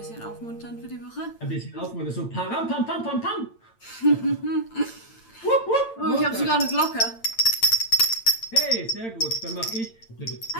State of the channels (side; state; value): right; late; 8.8 ms